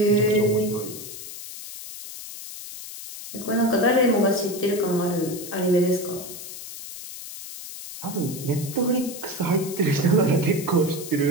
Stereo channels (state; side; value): noise; left; hiss, 11 dB below the sound